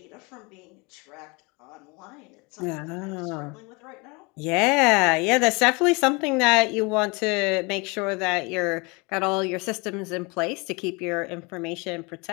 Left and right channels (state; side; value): quieter; right; 28.2 dB